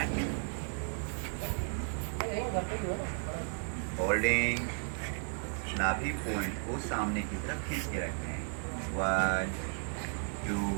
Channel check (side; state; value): left; silent; 55 dB below the other